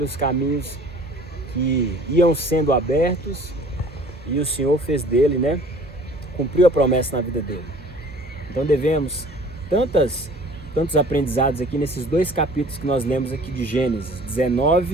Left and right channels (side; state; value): both; normal; correlation 0.49